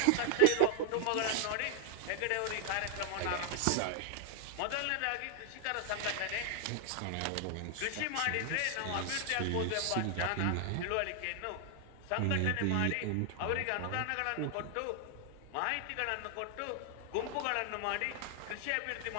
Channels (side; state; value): both; different; correlation 0.00